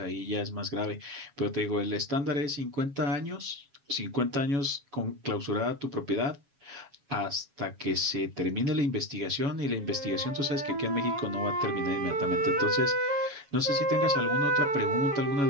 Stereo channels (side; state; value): left; late; 7.1 ms